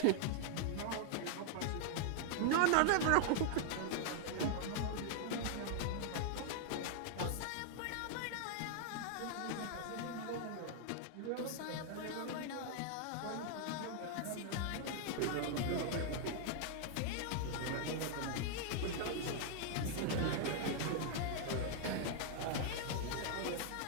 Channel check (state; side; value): different; both; correlation 0.00